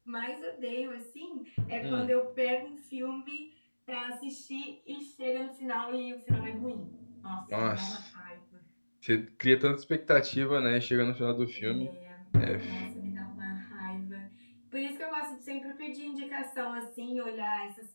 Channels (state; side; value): inverted; both; correlation -1.00